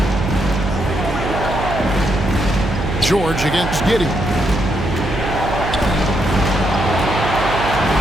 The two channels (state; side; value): noise; right; hum, 5 dB below the sound